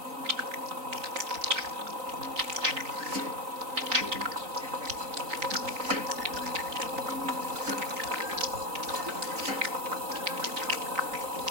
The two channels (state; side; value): late; left; 3.9 ms